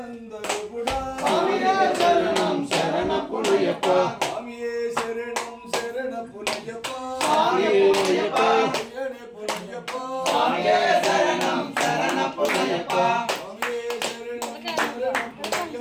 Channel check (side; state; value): both; identical; correlation 1.00